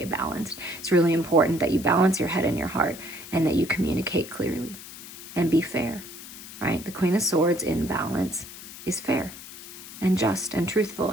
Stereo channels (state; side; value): noise; left; hiss, 14 dB below the sound